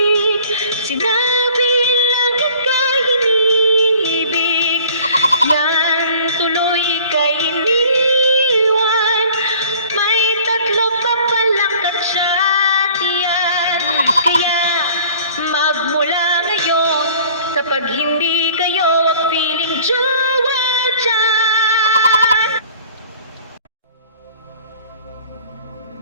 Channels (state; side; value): inverted; both; correlation -0.50